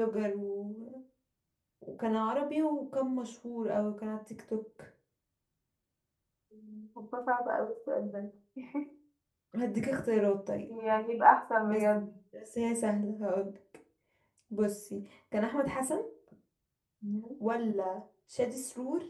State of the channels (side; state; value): both; identical; correlation 1.00